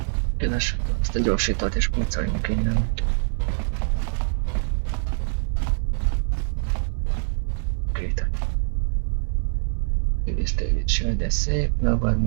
Kedves, ezt a gyorsítót és pucoljunk innen. Kétek. Tőlés, de szép, magad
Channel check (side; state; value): left; silent; digital silence